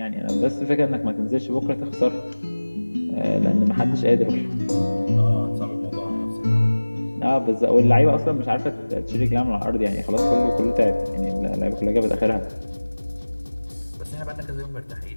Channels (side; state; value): both; inverted; correlation -1.00